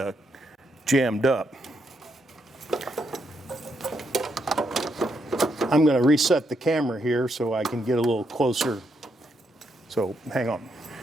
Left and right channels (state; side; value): normal; both; correlation 0.79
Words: jammed up. I'm going to reset the camera here so I can get a little closer. So hang on.